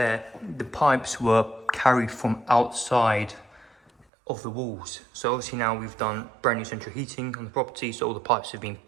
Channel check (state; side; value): drops out; left; at 4.0 s